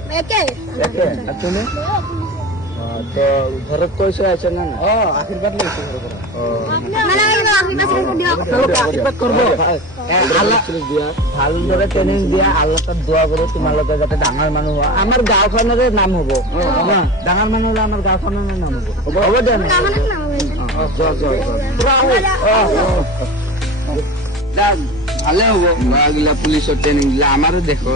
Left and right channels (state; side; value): normal; both; correlation 0.30